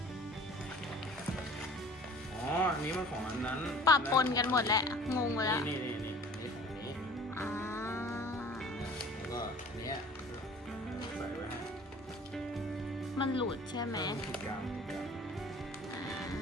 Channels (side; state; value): both; normal; correlation 0.47